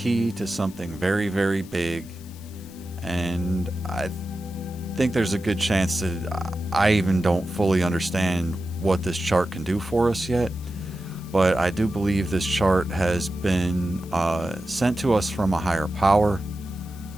to something very, very big, and I think there's a good chance that I even don't fully understand what this chart can do for us yet. But I do believe this chart has been sent to us from a higher power,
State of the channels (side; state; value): left; noise; hiss, 24 dB below the sound